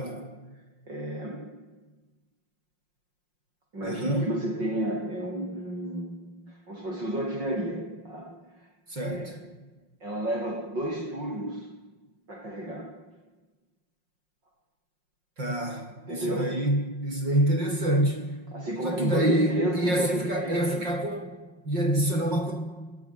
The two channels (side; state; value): left; late; 5.6 ms